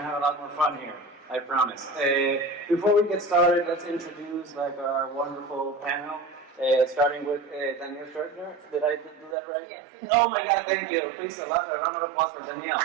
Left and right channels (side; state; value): left; drops out; at 9.3 s